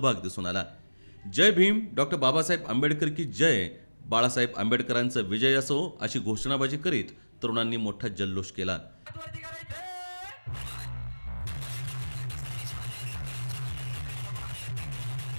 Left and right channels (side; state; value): both; inverted; correlation -1.00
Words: दिसून आला। जय भीम, डॉक्टर बाबासाहेब आंबेडकर की जय, बाळासाहेब आंबेडकरांचा विजय असो अशी घोषणाबाजी करीत तरुणांनी मोठा जल्लोष केला।